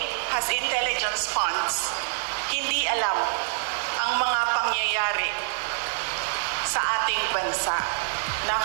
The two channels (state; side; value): silent; left; digital silence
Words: has intelligence funds, hindi alam ang mga pangyayari sa ating bansa.